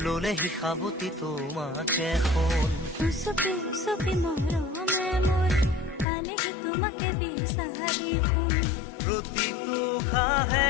ললে শিখাবতি তোমাকে শুন উচুপি উচুপি মৰমে মোৰ পালেহি তোমাকে বিচাৰি শুন প্ৰতিটো খাহে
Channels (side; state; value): right; drops out; at 6.1 s